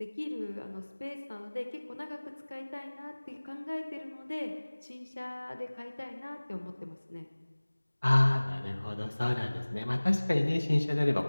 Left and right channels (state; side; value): inverted; both; correlation -1.00